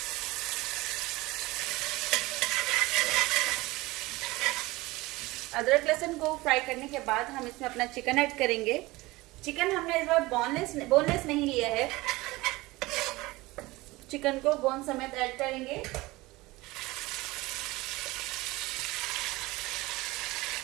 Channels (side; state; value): left; quieter; 20.8 dB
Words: अदरक लहसुन को फ्राई करने के बाद हम इसमें अपना चिकन ऐड करेंगे। चिकन हमने इस बार बोनलेस नहीं लिया है। चिकन को बोन समेत ऐड करेंगे।